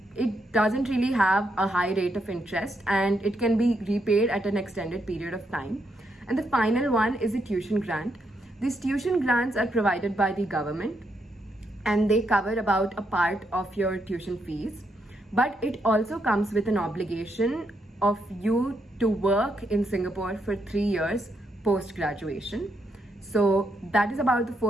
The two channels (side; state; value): both; normal; correlation 0.79